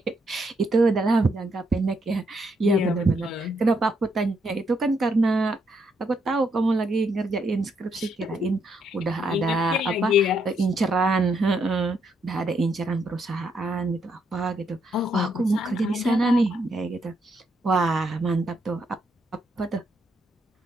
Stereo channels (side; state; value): both; normal; correlation 0.76